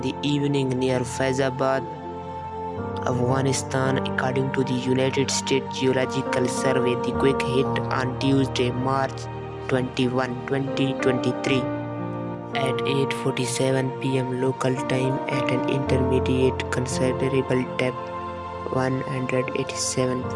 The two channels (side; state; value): both; identical; correlation 1.00